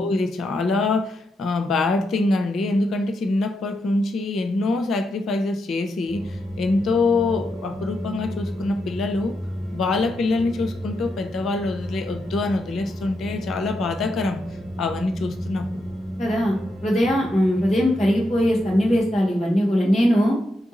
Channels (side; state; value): both; normal; correlation 0.84